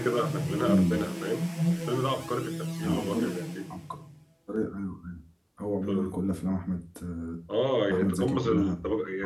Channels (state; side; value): identical; both; correlation 1.00